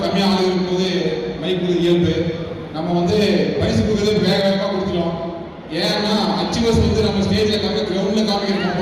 கம்மியாக ஆள் இருக்கும்போது மைக் இயல்பு. நம்ம வந்து பரிசு கொடுக்குறது வேக வேகமாக கொடுத்துட்டோம். ஏன்னா அச்சீவர்ஸ் வந்து நம்ம ஸ்டேஜில் கிரவுண்டில் காமிக்கிற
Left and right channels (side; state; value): both; identical; correlation 1.00